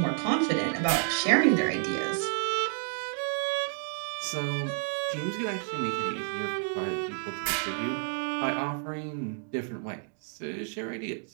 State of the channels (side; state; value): left; silent; 58 dB below the other